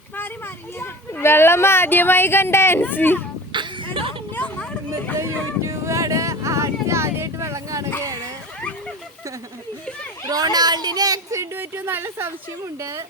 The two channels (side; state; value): both; normal; correlation 0.34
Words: വെള്ളം ആദ്യമായി കണ്ട ആൻസി യൂട്യൂബാണ്. ആദ്യമായിട്ട് വെള്ളം കാണുകയാണ്. റൊണാൾഡിന് ആക്സിഡന്റ് പറ്റിയ നല്ല സംശയമുണ്ട്.